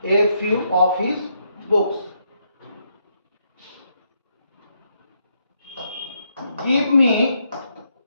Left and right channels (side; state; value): both; inverted; correlation -0.77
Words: a few of his books। give me